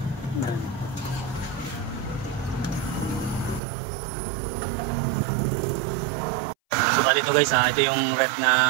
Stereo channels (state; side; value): drops out; left; at 3.6 s